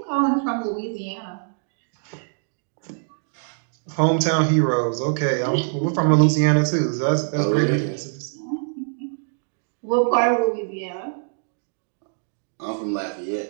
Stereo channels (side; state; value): left; silent; digital silence